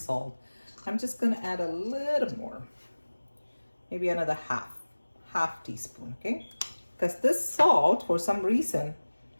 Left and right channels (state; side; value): inverted; both; correlation -1.00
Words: I'm just gonna add a little more, maybe another half teaspoon, okay? Because this salt, for some reason,